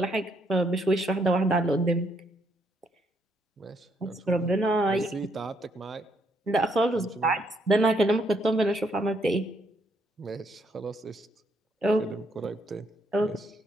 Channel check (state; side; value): normal; both; correlation 0.73